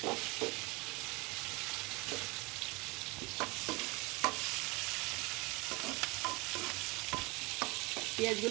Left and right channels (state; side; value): quieter; left; 26.2 dB